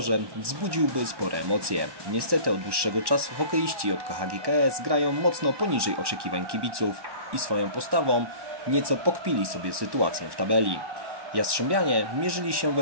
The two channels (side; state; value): left; late; 1.1 ms